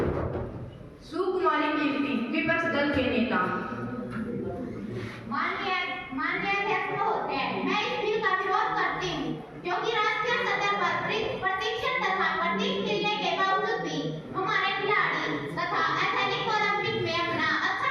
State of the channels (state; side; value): identical; both; correlation 1.00